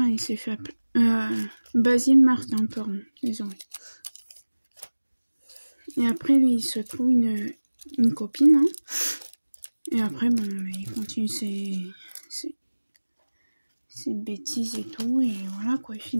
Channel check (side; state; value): both; inverted; correlation -1.00